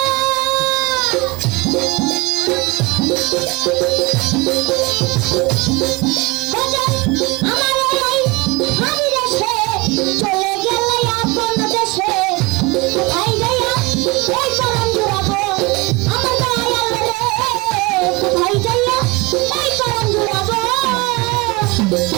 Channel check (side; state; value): left; quieter; 24.4 dB